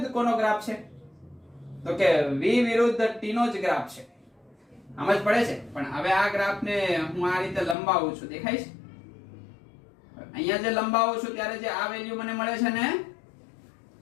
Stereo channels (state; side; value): drops out; right; at 7.8 s